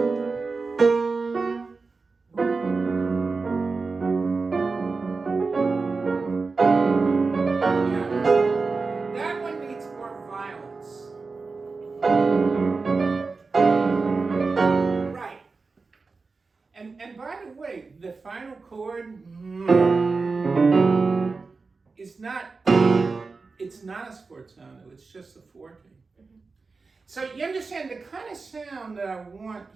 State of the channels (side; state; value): left; quieter; 4.2 dB